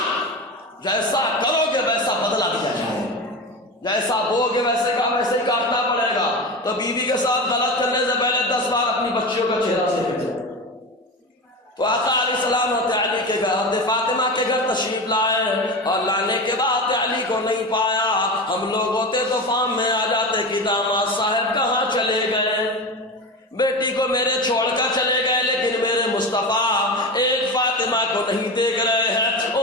جیسا کرو گے ویسا بدلہ دیا جائے، جیسا بو گے ویسے ہی کاٹنا پڑے گا۔ تو بیوی کے ساتھ غلط کرنے سے پہلے 10 بار اپنی بچیوں کا چہرہ دیکھ لیں۔ تو آقا علیہ السلام حضرت علی کے گھر، حضرت فاطمہ کے گھر تشریف لائے، اور لانے کے بعد علی کو نہیں پایا۔ ہم لوگ ہوتے تو فام میں آ جاتے کہ داماد صاحب کہاں چلے گئے، بیٹی کو میرے چھوڑ کر چلے گئے، لیکن میرے مصطفیٰ ایک فاطمہ کو نہیں دیکھ رہے ہیں،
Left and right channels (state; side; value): normal; both; correlation 0.25